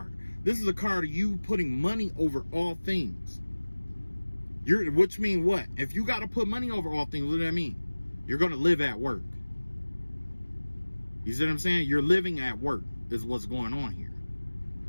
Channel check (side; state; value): both; inverted; correlation -1.00